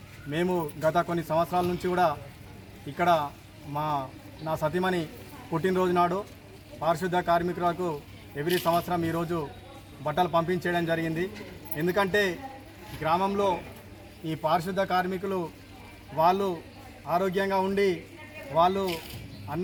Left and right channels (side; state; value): both; identical; correlation 1.00